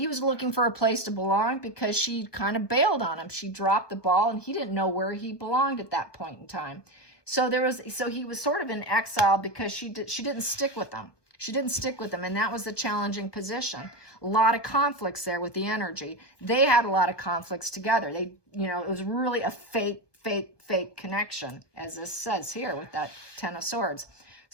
was looking for a place to belong because she kind of bailed on him. She dropped the ball, and he didn't know where he belonged at that point in time. So he was sort of in exile because she didn't stick with him. She didn't stick with him, and that was the challenging position. A lot of conflicts there with the energy. They had a lot of conflicts together. It was really a fake connection, as this says here with that 10 of Swords.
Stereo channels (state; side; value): late; right; 1.2 ms